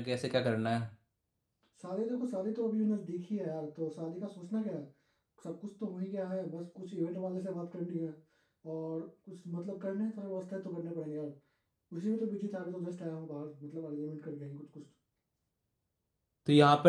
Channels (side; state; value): both; identical; correlation 1.00